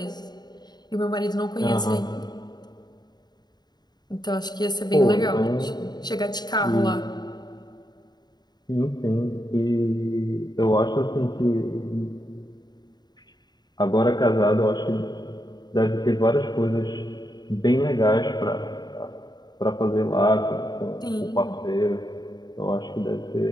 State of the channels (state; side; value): late; right; 0.20 ms